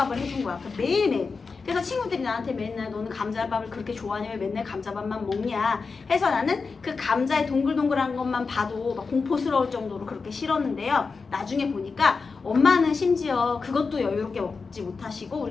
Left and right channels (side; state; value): right; quieter; 4.7 dB